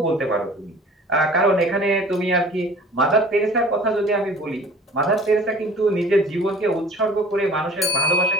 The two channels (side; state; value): both; normal; correlation 0.47